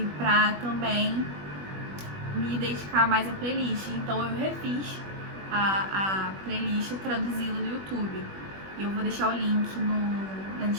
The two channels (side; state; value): left; late; 21 ms